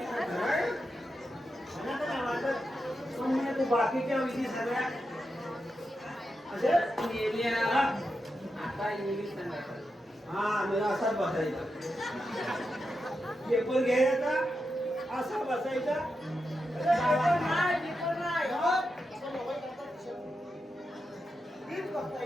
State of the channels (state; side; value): normal; both; correlation 0.87